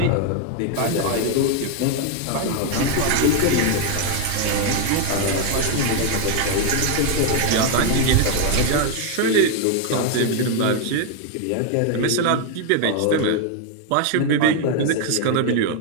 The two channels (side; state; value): both; different; correlation 0.01